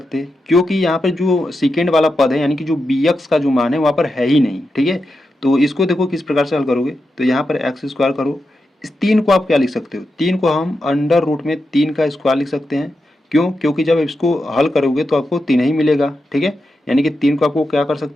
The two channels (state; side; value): normal; both; correlation 0.88